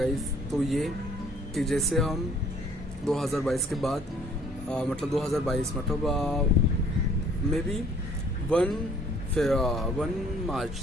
तो ये कि जैसे हम 2022 के बाद 2022 मे बी 1 फिर 1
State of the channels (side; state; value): both; normal; correlation 0.58